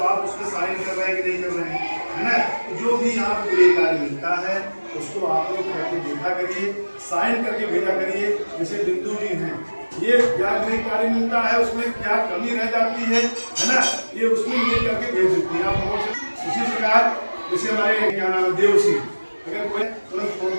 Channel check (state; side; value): inverted; both; correlation -1.00